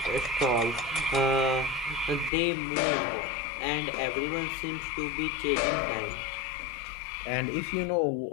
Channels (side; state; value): right; drops out; at 2.3 s